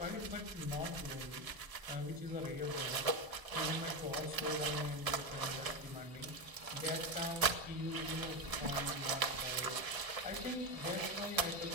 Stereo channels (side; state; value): left; late; 1.0 ms